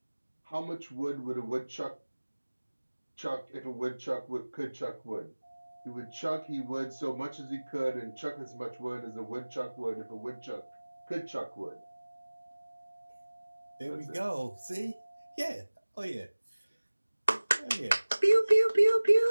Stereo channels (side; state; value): both; inverted; correlation -1.00